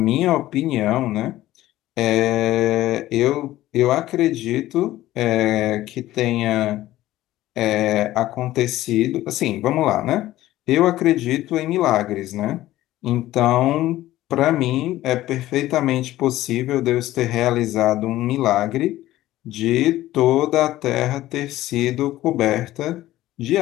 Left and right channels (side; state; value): right; quieter; 15.4 dB